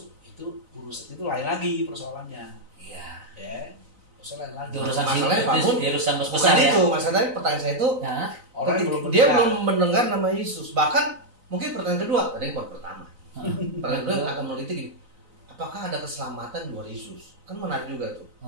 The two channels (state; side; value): late; left; 3.9 ms